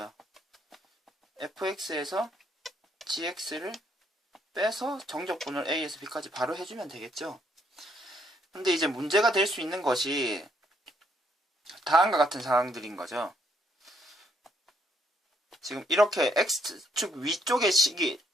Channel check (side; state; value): both; normal; correlation 0.71